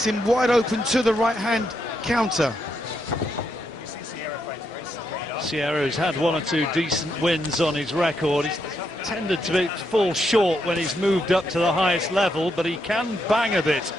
him wide open to the right hand counter. Sierra has had 1 or 2 decent wins on his record. He's tended to fall short when he's moved up to the highest level, but he can bang a bit.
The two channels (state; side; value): normal; both; correlation 0.80